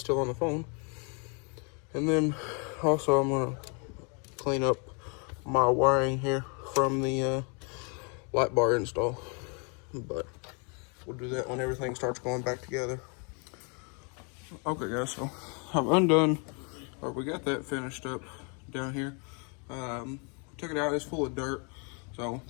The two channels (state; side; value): quieter; right; 35.9 dB